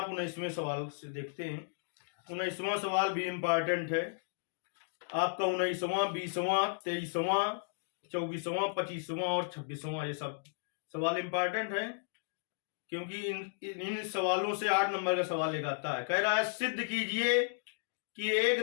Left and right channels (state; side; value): silent; right; digital silence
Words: 19वें सवाल से देखते हैं। 19वां सवाल भी इम्पोर्टेंट है। आपका 19वां, 20वां, 23वां, 24वां, 25वां और 26वां, ये सब सवाल इम्पोर्टेंट है, क्योंकि इन सवालों से 8 नंबर का सवाल लेकर आता है। कह रहा है सिद्ध कीजिए कि